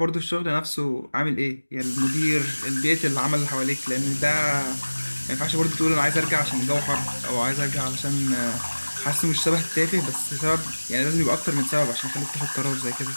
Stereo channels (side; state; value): both; inverted; correlation -1.00